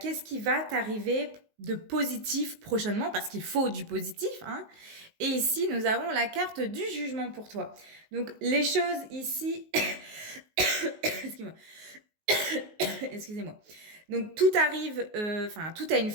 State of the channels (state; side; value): late; left; 19 ms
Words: qui va t'arriver de positif prochainement, parce qu'il faut du positif. Hein. Et ici, nous avons la carte du jugement pour toi. Donc, les choses ici... Excuse-moi. Excusez-moi. Donc, tout arrive, tout a une